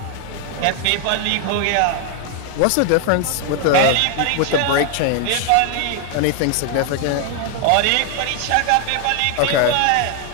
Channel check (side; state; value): both; different; correlation 0.00